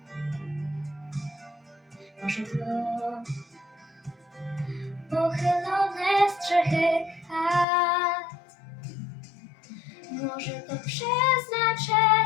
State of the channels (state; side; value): drops out; right; at 7.7 s